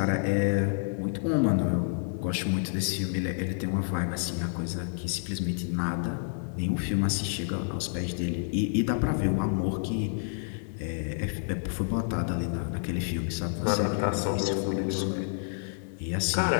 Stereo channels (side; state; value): right; silent; 59 dB below the other